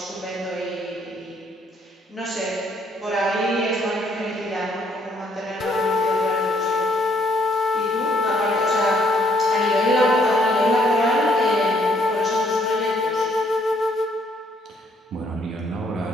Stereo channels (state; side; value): normal; both; correlation 0.68